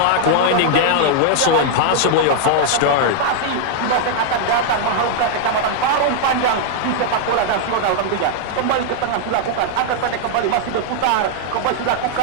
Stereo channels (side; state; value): both; different; correlation -0.01